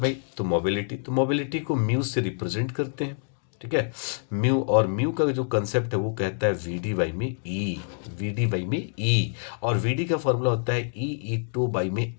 तो मोबिलिटी। तो मोबिलिटी को म्यू से रिप्रेजेंट करते हैं। ठीक है, म्यू, और म्यू का जो कंसेप्ट है वो कहता है वी डी बाई में ई, वी डी बाई में ई। और वी डी का फॉर्मूला होता है ई टू बाई में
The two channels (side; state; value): right; silent; digital silence